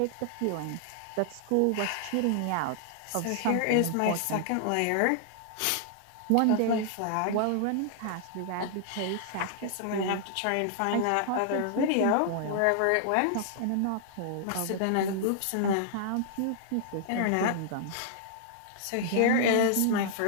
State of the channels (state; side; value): different; both; correlation -0.01